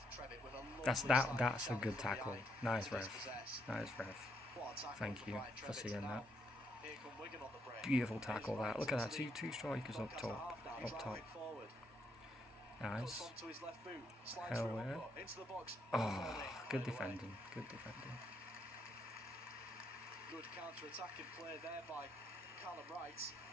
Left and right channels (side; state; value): both; normal; correlation 0.75